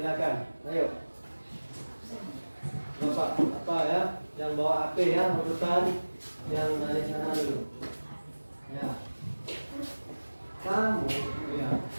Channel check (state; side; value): inverted; both; correlation -1.00